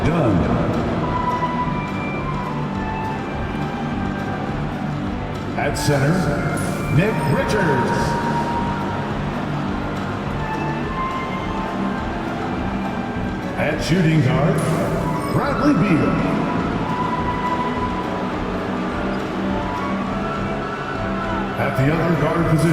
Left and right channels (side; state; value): both; identical; correlation 1.00